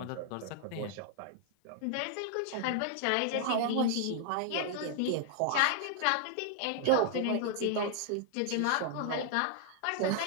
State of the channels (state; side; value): different; both; correlation 0.00